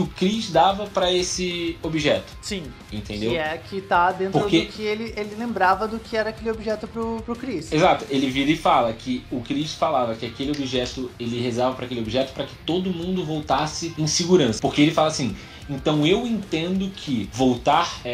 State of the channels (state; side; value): identical; both; correlation 1.00